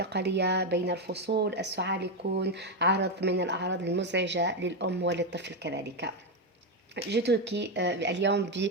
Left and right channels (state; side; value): normal; both; correlation 0.07